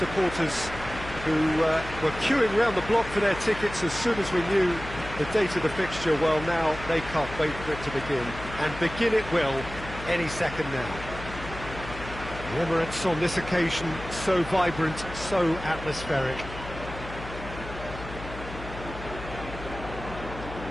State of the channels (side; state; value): left; noise; hum, 12 dB below the sound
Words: who were queuing round the block for their tickets as soon as we knew the date of the fixture, well, now they can't wait for it to begin, and begin it will any second now. The Emirates on this occasion so vibrant, so atmospheric.